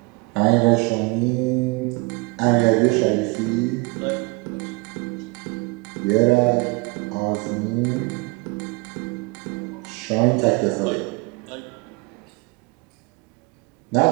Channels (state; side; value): quieter; left; 26.8 dB